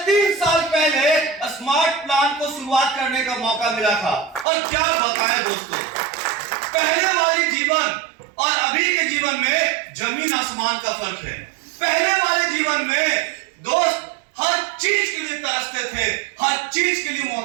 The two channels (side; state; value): left; drops out; at 4.5 s